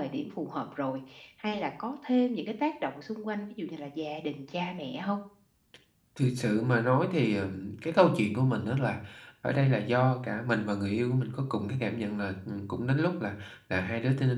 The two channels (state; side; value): identical; both; correlation 1.00